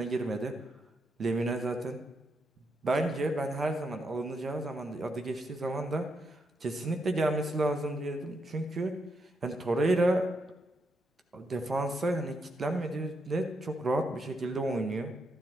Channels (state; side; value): normal; both; correlation 0.80